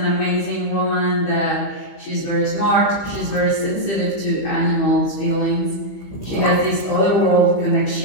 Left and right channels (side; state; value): right; late; 15 ms